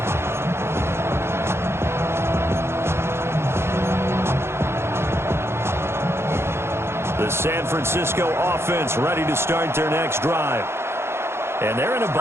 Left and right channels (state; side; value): late; left; 0.12 ms